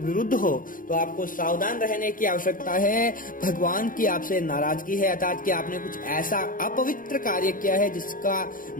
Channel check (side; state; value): right; late; 0.40 ms